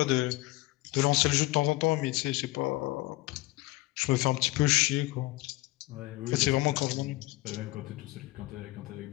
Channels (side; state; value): right; quieter; 20.0 dB